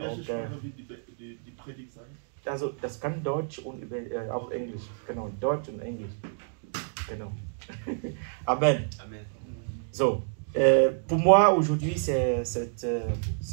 Die Predigt sein? Also das kann Deutsch und auch Englisch. Genau, Deutsch und Englisch. Genau. Amen. Amen. So, pour moi aujourd'hui c'est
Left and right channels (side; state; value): left; silent; digital silence